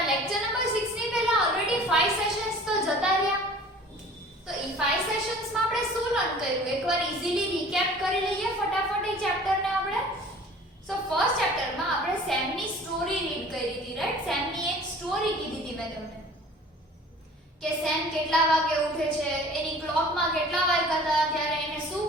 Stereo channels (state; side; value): normal; both; correlation 0.46